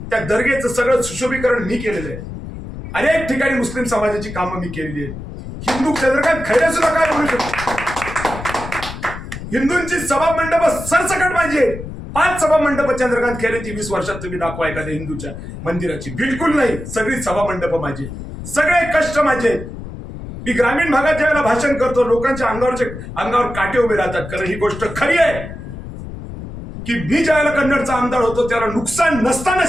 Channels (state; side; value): noise; left; rumble, 10 dB below the sound